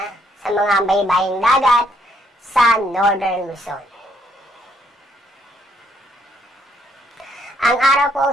sa mga baybaying dagat sa northern Luzon. Ang araw po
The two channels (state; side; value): normal; both; correlation 0.70